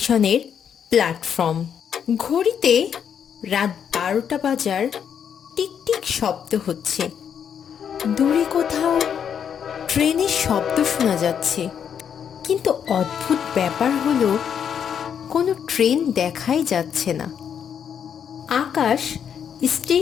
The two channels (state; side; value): quieter; right; 8.1 dB